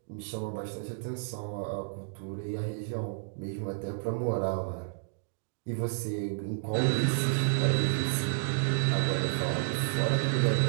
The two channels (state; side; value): silent; left; digital silence